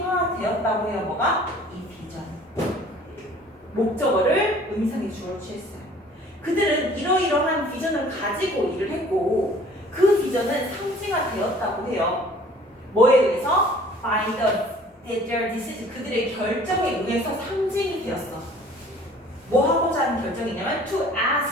해요. 뭐가? 이 비전. 목적어를 의미상의 주어로 취했어요. 그들은 이러이러한 비전을 가지고 일을 했고 그 비전은 상징화되었다고 해요. 뭐에 의해서? By their decision. 그들의 결정에 의해서 상징이 되었어. 뭐 하고자 하는 결정이냐면 to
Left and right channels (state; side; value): normal; both; correlation 0.52